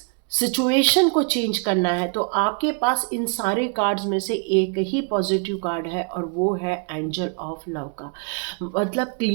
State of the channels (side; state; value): left; quieter; 38.2 dB